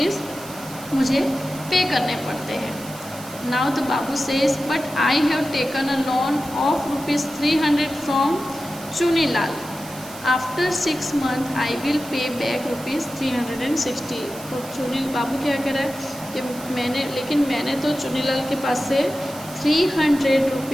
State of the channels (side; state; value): right; noise; hiss, 15 dB below the sound